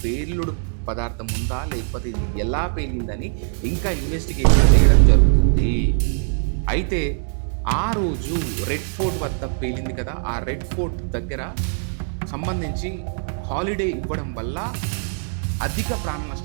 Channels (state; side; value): silent; left; digital silence